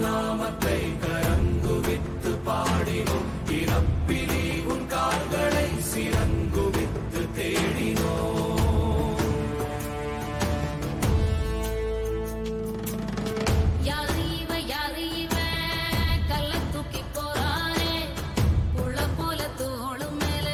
கரங்குவித்து பாடினோம், இறப்பிலி உன் கால்களை சிறங்குவித்து தேடினோம்.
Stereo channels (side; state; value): both; identical; correlation 1.00